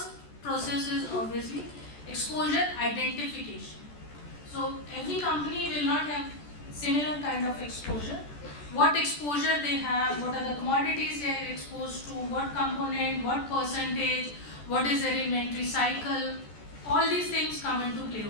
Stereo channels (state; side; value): late; right; 14 ms